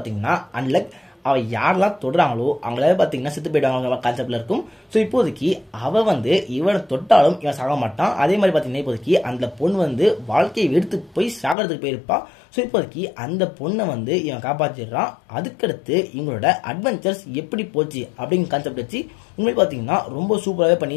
அன்லக். அவள் யாரெல்லாம் தொடுறாங்களோ அவங்களால பார்த்தீங்கன்னா செத்து போயிடுவாங்க கான்செப்டில் இருக்கும். ஸோ இப்போதைக்கு அவள் வந்து இவனை தொட்டாலும் இவன் சாக மாட்டான். அதே மாதிரி பார்த்தீங்கன்னா இப்போதைக்கு அந்த பொண்ணு வந்து வாழ்க்கையை எடுத்து போய் சாகிறதுக்கு போயிருப்பா. ஸோ இப்போதைக்கு அந்த பொண்ணை வந்து இவன் காப்பாற்றிடுறான். அதுக்கடுத்து இவங்களோட அட்வென்ச்சர்ஸ் எப்படி போச்சு அப்படிங்கிற கான்செப்ட் வச்சு உண்மையை பார்த்தீங்கன்னா ரொம்ப சூப்பராகவே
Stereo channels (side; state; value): right; drops out; at 11.6 s